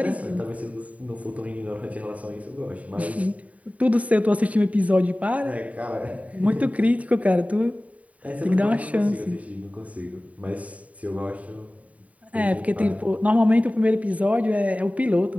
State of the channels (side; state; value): left; late; 0.069 ms